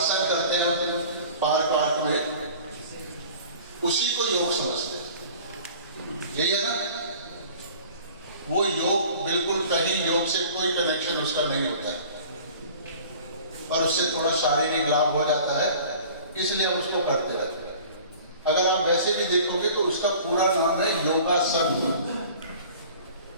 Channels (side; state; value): both; inverted; correlation -0.45